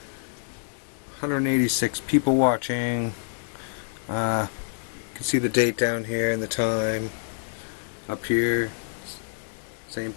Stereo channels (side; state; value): right; silent; 60 dB below the other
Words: 186 people watching. You can see the date down here and the time. Up here, same